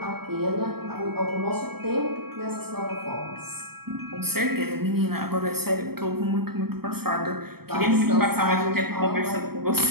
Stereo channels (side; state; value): left; late; 0.95 ms